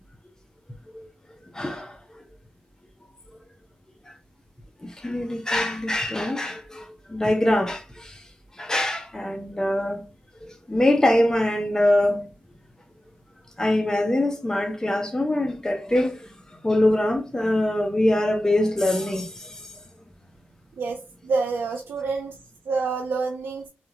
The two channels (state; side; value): normal; both; correlation 0.92